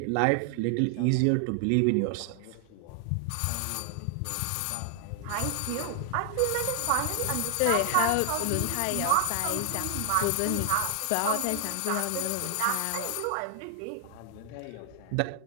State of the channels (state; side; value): different; both; correlation 0.00